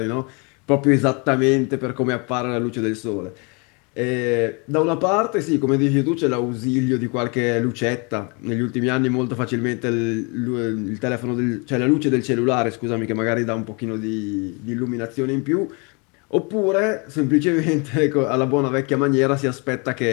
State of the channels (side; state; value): right; quieter; 31.8 dB